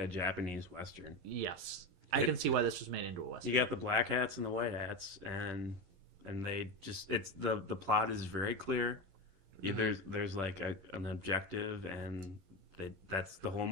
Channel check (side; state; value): left; late; 11 ms